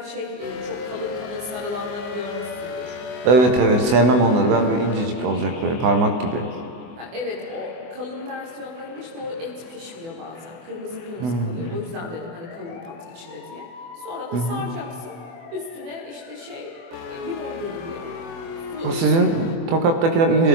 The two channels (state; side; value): late; left; 24 ms